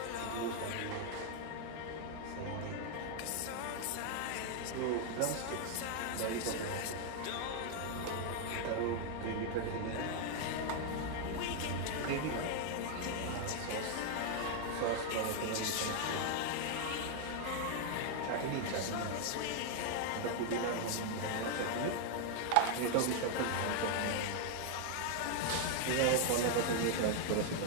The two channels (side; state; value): both; different; correlation 0.00